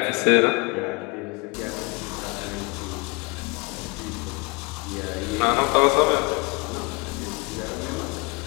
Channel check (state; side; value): quieter; right; 27.9 dB